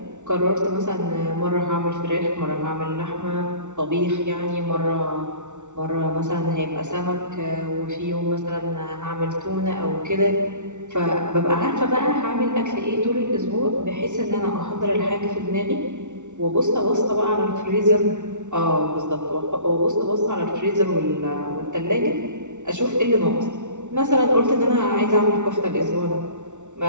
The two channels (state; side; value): late; left; 0.84 ms